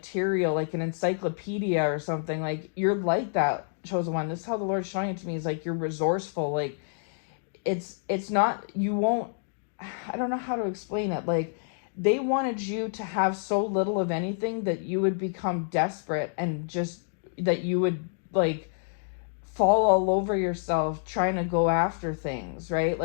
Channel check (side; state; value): right; silent; digital silence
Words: like an encyclopedia or something. Like, you're like that, chosen one. This is how the Lord's showing it to me, is like you're resourceful. Like, it's not, you won't, I don't know how to explain it. Like, they wanted you to have so little of anything that you would become desperate, and just that you would like fall all over yourself trying to go after things, right?